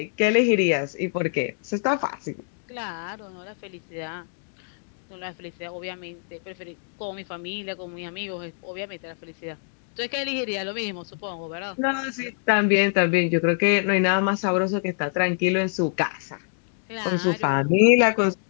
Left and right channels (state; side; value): silent; right; digital silence